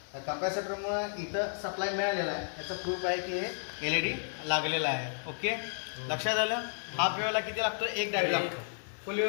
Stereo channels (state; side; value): silent; right; digital silence